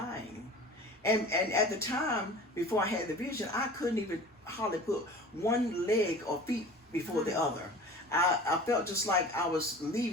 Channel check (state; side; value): normal; both; correlation 0.41